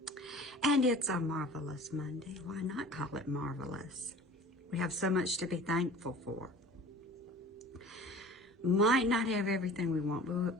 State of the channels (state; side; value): normal; both; correlation 0.43